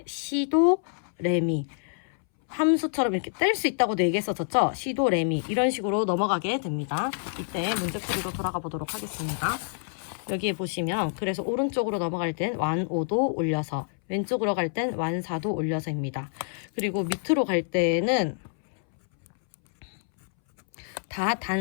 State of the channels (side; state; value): right; silent; 60 dB below the other